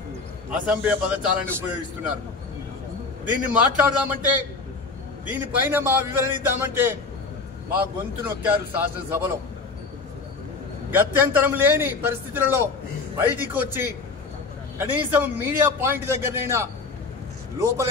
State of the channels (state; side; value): quieter; right; 4.1 dB